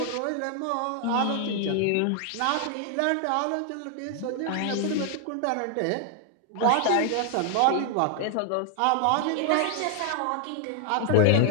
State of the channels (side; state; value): both; different; correlation 0.00